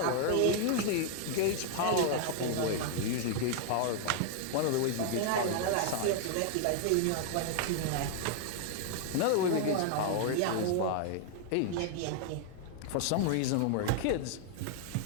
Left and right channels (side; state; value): both; different; correlation 0.00